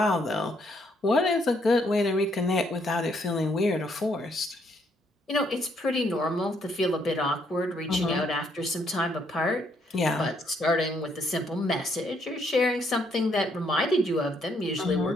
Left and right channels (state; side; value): normal; both; correlation 0.71